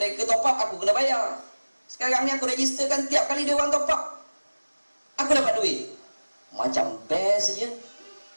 top up, aku kena bayar. Sekarang ni aku registerkan tiap kali dia orang top up, aku dapat duit. Macam best je.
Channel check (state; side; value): inverted; both; correlation -1.00